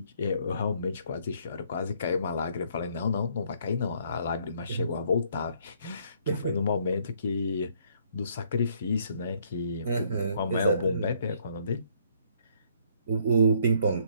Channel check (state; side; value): inverted; both; correlation -0.66